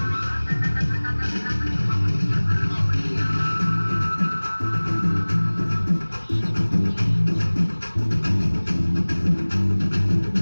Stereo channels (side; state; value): both; inverted; correlation -1.00